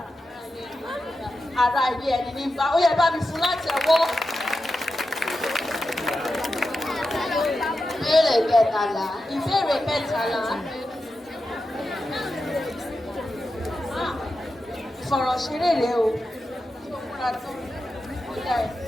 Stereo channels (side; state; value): both; normal; correlation 0.90